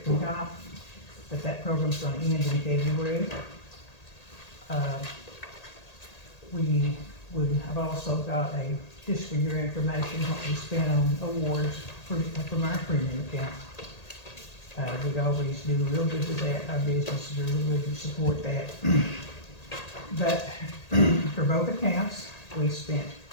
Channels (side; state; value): right; late; 1.8 ms